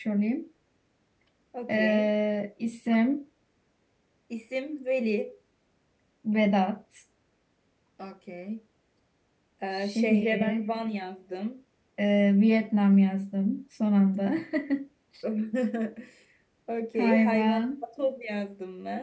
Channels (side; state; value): both; identical; correlation 1.00